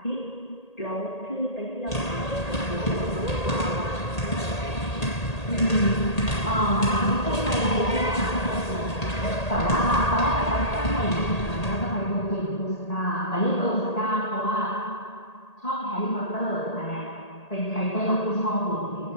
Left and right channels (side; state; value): right; late; 1.8 ms